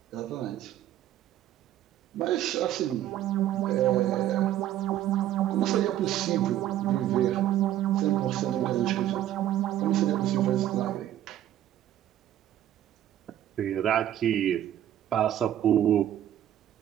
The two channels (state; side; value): quieter; left; 12.1 dB